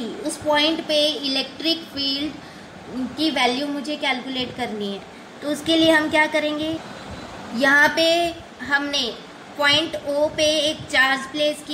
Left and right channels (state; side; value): identical; both; correlation 1.00